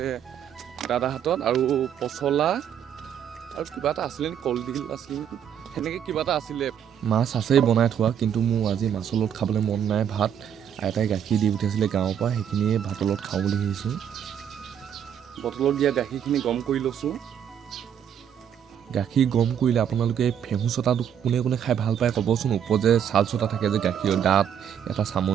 দাদাৰ হাতত, আৰু পচলা আৰু কিবা এটা আছিলে নেকি, কলডিল আছিলে নেকি, সেনেকৈ কিবা এটা আছিলে। মাছ আছেই বনাই থোৱা, কিন্তু মোৰ আজি মাছৰ লগত খাবলৈ মন নাই। ভাত আইতাই গাখীৰ দি পঠিয়াইছিলে গাঁৱৰ পৰা, সেইখিনিয়ে ভাতৰ লগত খাওঁ বুলি ভাবিছোঁ। বটলত দিয়া গাখীৰখিনি গৰম কৰি লৈছোঁ। গাখীৰ গৰম কৰিলে আপোনালোকে ফেহু চটাটো কোনে কোনে খাই ভাল পায় ক'বচোন। ওপৰত যে ছাল চটা থাকে যে গাখীৰৰ দাঁত এটা,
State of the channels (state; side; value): quieter; left; 8.8 dB